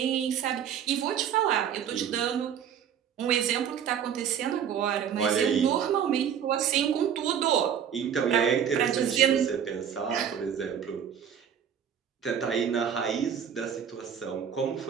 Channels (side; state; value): left; quieter; 8.5 dB